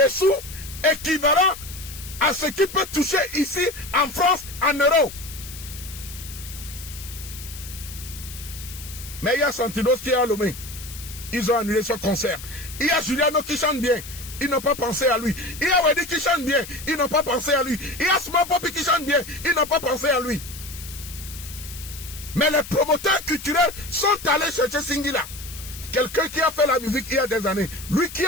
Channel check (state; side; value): noise; left; hiss, 13 dB below the sound